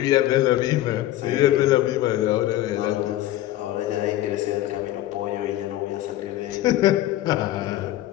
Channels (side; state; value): right; quieter; 14.5 dB